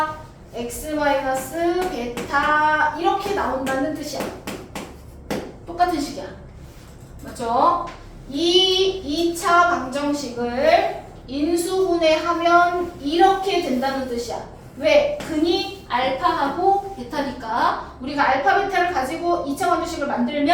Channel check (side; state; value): both; identical; correlation 1.00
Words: x 마이너스 베타 이렇게 나온다는 뜻이야. 똑같은 식이야. 맞죠? 이 2차 방정식을 인수분해하면 이렇게 된다는 뜻이야. 왜? 근이 알파하고 베타니까 우리가 알파 베타를 가지고 2차 방정식을